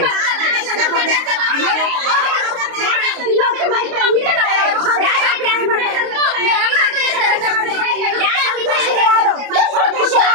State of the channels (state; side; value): late; left; 29 ms